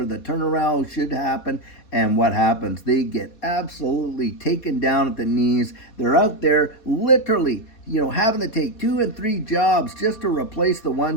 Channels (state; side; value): late; right; 4.2 ms